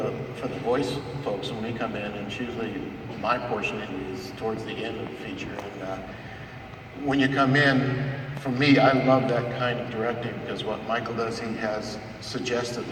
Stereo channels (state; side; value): identical; both; correlation 1.00